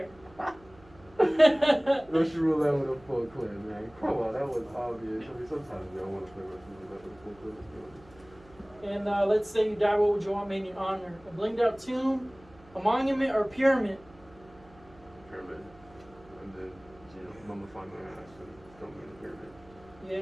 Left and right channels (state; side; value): noise; right; hum, 25 dB below the sound